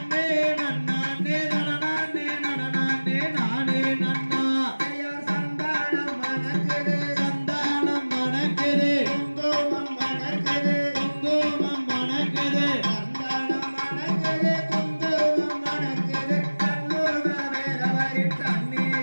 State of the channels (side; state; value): both; inverted; correlation -1.00